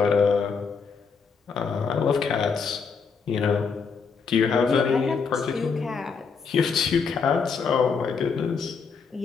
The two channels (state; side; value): quieter; right; 5.5 dB